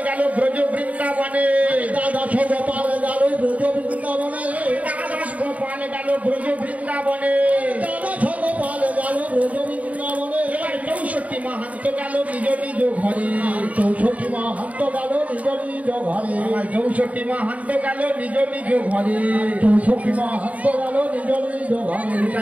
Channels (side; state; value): left; late; 0.069 ms